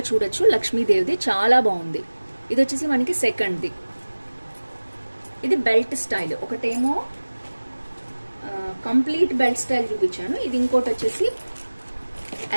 చూడొచ్చు, లక్ష్మీదేవిది చాలా బాగుంది. ఇది వచ్చేసి మనకి సెకండ్ది, ఇది బెల్ట్ స్టైల్. ఒకటేమో కంప్లీట్ బెల్ట్ స్టైల్ చూపించాను, ఇది ఇంకోటి వచ్చేసి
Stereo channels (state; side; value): inverted; both; correlation -1.00